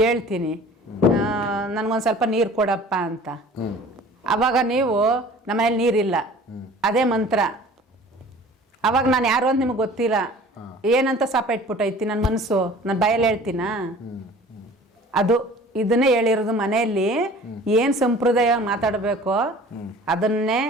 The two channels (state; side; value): normal; both; correlation 0.46